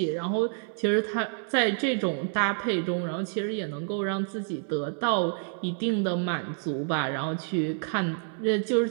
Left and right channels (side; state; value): left; silent; 59 dB below the other